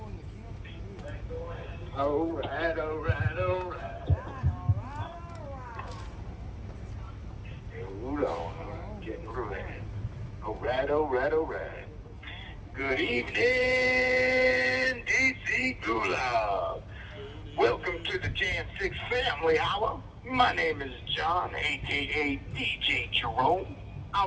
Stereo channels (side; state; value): both; identical; correlation 1.00